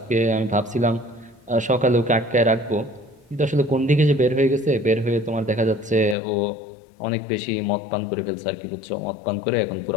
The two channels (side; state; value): right; drops out; at 6.2 s